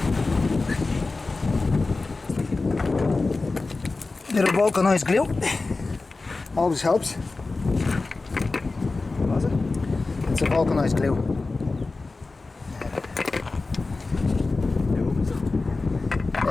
Bit of vulcanized glue always helps. Was it? It's a vulcanized glue.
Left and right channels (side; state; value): right; quieter; 3.6 dB